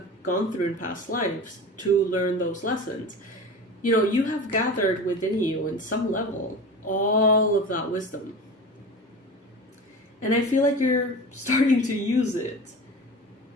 gone through in past lives to learn those lessons, you have gathered within you in some level all of that wisdom. And I feel like you're starting to use it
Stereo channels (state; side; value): normal; both; correlation 0.33